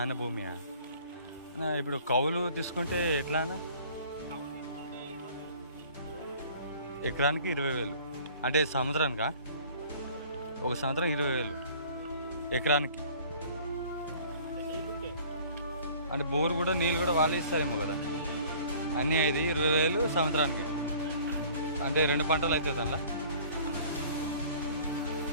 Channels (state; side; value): inverted; both; correlation -0.50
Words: భూమియా? ఇప్పుడు కౌలు తీసుకుంటే ఎట్లా అన్న? ఎకరానికి 20,000 అంటే సంవత్సరానికా? ఒక సంవత్సరం 20,000 ఎకరానికి. అంటే బోరు కూడా నీళ్ళు కూడా వాళ్ళు ఇస్తారేమో కదా అన్నీ. అయితే 20,000 సంవత్సరానికి అంటే 2 పంటలు అవుతుంది అందులో.